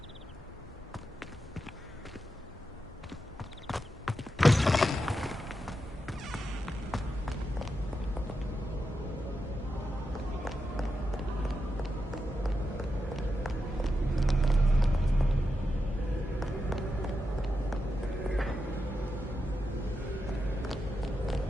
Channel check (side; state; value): both; normal; correlation 0.87